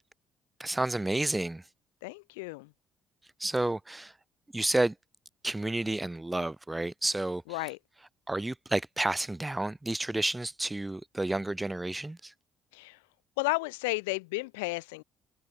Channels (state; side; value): normal; both; correlation 0.79